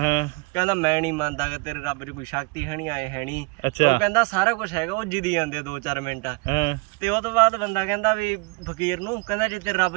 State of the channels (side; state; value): left; quieter; 28.0 dB